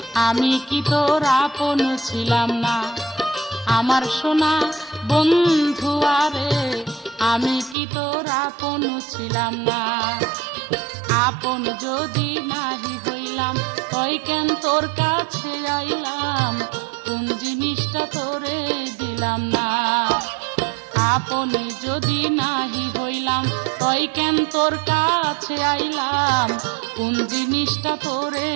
আমি কি তোর আপন ছিলাম না, আমার সোনা বন্ধু আরে আমি কি তোর আপন ছিলাম না। আপন যদি নাহি হইলাম তই কেন তোর কাছে আইলাম, কোন জিনিসটা তোরে দিলাম না। আপনি যদি নাহি হইলাম তই কেন তোর কাছে আইলাম, কোন জিনিসটা তোরে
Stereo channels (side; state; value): left; drops out; at 7.8 s